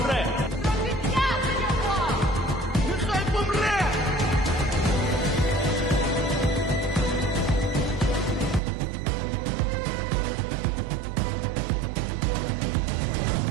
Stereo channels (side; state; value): left; drops out; at 8.6 s